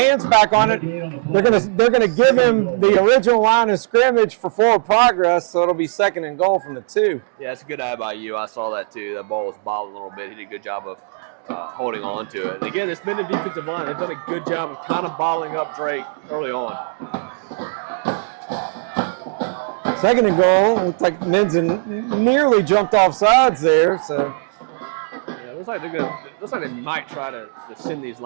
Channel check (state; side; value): silent; left; digital silence